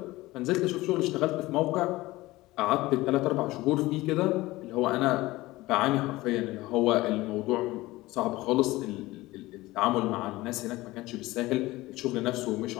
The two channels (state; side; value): quieter; right; 19.0 dB